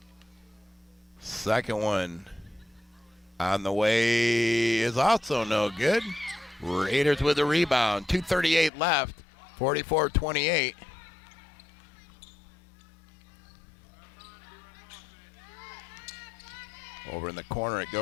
Second one on the way is also no good. Raiders with a rebound. 2:38 left. 44-28. Over in the corner it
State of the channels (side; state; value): right; drops out; at 8.7 s